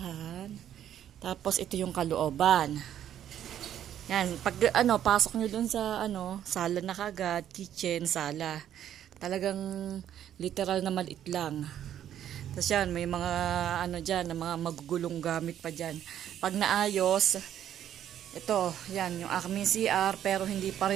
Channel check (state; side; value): quieter; left; 10.6 dB